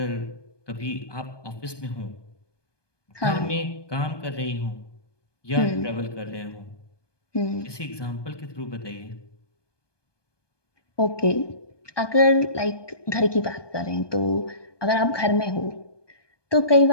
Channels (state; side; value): late; right; 1.2 ms